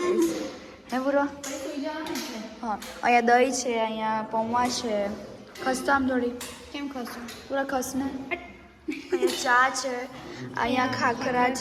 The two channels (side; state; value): both; identical; correlation 1.00